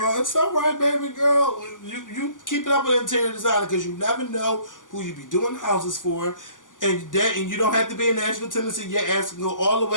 it's all right, baby girl. You keep it up with interior designer because you never know who you be doing houses for. And you don't have to be in Nashville, Tennessee. Your ass can go all the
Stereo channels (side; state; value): right; late; 0.88 ms